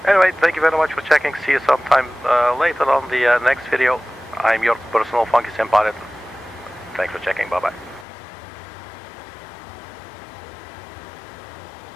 Anyway, thank you very much for checking. See you sometime later on the next video. I'm your personal Funky Sim Pilot. Thanks for checking. Bye bye.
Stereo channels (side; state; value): right; drops out; at 8.1 s